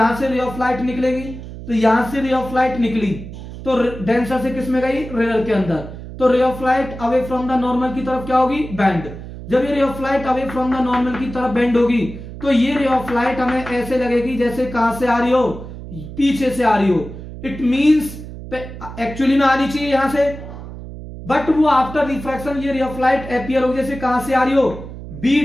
से रे ऑफ लाइट निकलेगी, तो यहां से रे ऑफ लाइट निकली तो डेंसर से किस में गई, रेयर के अंदर। तो रे of light away from the normal की तरफ क्या होगी, बेंड। जब ये रे of light away from the normal की तरफ बेंड होगी तो ये रे ऑफ लाइट हमें ऐसे लगेगी जैसे कहां से आ रही हो, पीछे से आ रही हो। इट मींस एक्चुअली में आनी चाहिए यहां से, बट वो आफ्टर रिफ्रैक्शन ये रे ऑफ लाइट अपीयर होगी जैसे कहां से आ रही हो, बी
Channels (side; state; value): right; noise; hum, 12 dB below the sound